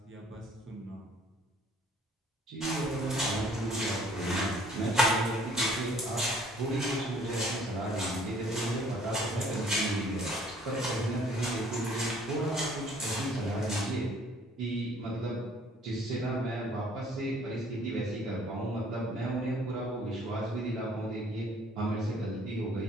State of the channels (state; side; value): normal; both; correlation 0.57